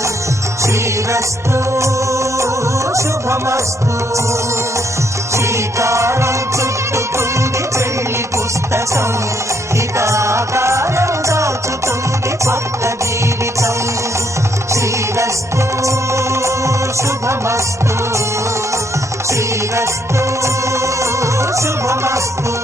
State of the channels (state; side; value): normal; both; correlation 0.72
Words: శ్రీరస్తు శుభమస్తు శ్రీకారం చుట్టుకుంది పెళ్లి పుస్తకం ఇక ఆకారం దాచుతుంది కొత్త జీవితం శ్రీరస్తు శుభమస్తు శ్రీరస్తు శుభమస్తు